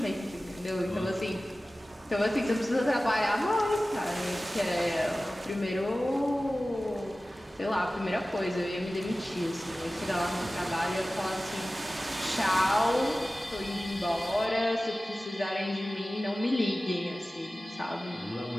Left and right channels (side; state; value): both; normal; correlation 0.96